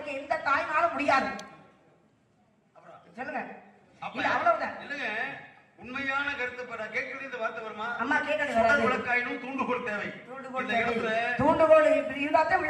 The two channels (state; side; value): identical; both; correlation 1.00